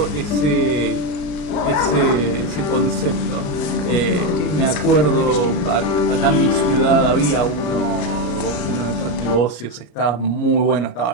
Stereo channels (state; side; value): late; right; 34 ms